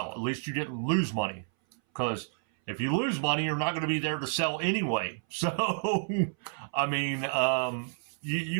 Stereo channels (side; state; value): left; silent; 58 dB below the other